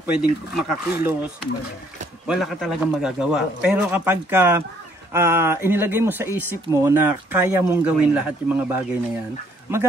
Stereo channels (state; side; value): normal; both; correlation 0.65